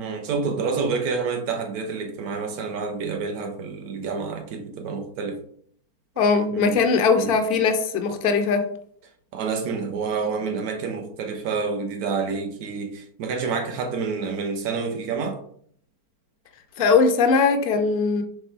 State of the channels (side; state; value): left; late; 4.4 ms